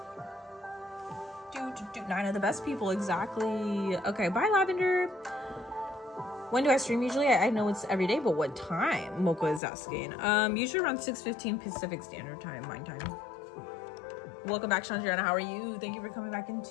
9 of the best people, exactly. Okay, bye, Lavender. When do I stream usually? I know it's every day, but what time? Mocha is asking. Usually around 6:15 Pacific Standard Time, mine time. Welcome back, Chandriana. How are you? Thank you for coming back in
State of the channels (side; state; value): right; drops out; at 9.6 s